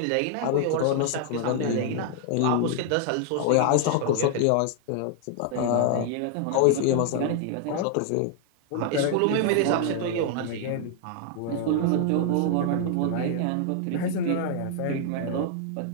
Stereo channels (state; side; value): different; both; correlation 0.00